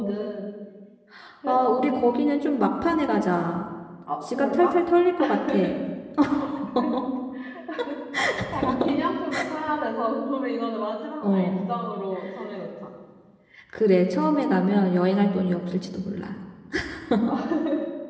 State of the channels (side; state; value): both; identical; correlation 1.00